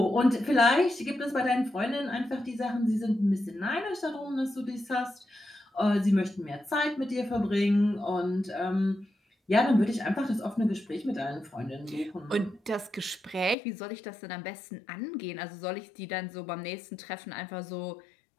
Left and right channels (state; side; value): drops out; right; at 13.6 s